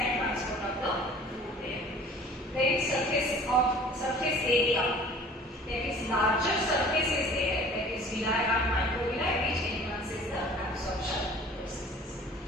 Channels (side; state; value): both; normal; correlation 0.48